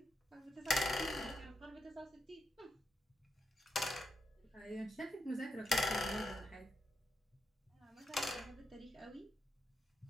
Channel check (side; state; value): both; normal; correlation 0.83